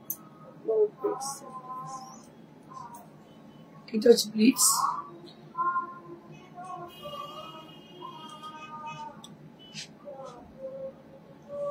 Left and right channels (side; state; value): both; identical; correlation 1.00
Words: এটা হচ্ছে প্লিটস।